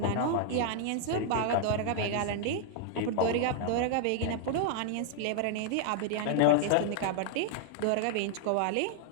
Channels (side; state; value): both; different; correlation 0.00